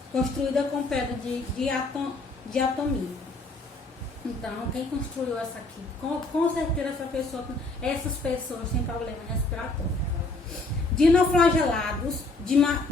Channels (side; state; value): right; quieter; 3.2 dB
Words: construída com pedra de diatomito. Então, quem construiu essa aqui? Com certeza essas pessoas têm problema respiratório. Dinoflagelados,